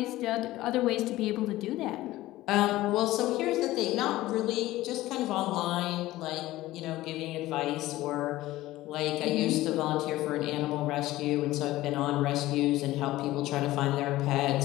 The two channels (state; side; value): quieter; right; 16.7 dB